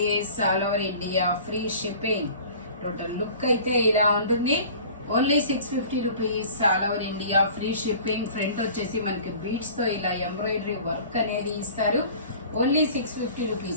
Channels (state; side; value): inverted; both; correlation -0.45